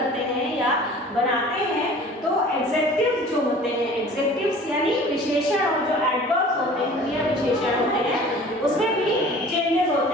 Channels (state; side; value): normal; both; correlation 0.45